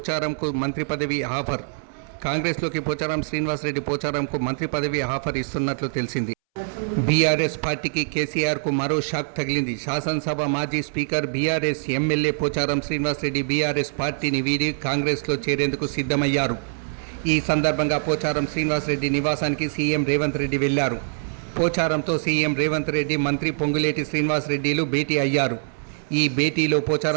మంత్రి పదవి ఆఫర్. కాంగ్రెస్లోకి పోచారం శ్రీనివాసరెడ్డి పోచారంకు మంత్రి పదవి ఆఫర్ ఇస్తున్నట్లు తెలిసింది. బీఆర్ఎస్ పార్టీకి కేసీఆర్కు మరో షాక్ తగిలింది. శాసనసభ మాజీ speaker BRS MLA Pocharam Srinivas Reddy BRS పార్టీని వీడి కాంగ్రెస్లో చేరేందుకు సిద్ధమయ్యారు. ఈ సందర్భంగా పోచారం శ్రీనివాసరెడ్డి నివాసానికి సీఎం రేవంత్ రెడ్డి వెళ్లారు. పోచారంతో సీఎం రేవంత్ రెడ్డి, మంత్రి పొంగులేటి శ్రీనివాసరెడ్డిలు భేటీ అయ్యారు. ఈ భేటీలో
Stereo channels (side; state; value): left; silent; 63 dB below the other